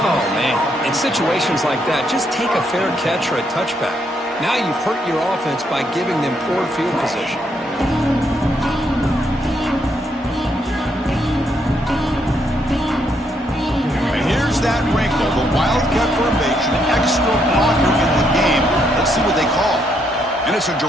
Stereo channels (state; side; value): normal; both; correlation 0.75